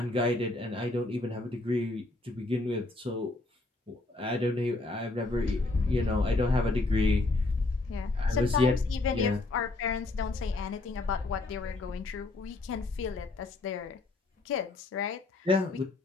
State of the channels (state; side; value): quieter; right; 3.1 dB